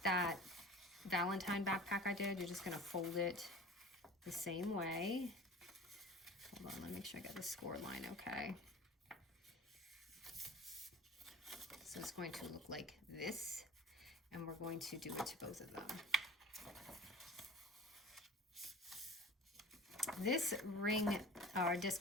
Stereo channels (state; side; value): normal; both; correlation 0.40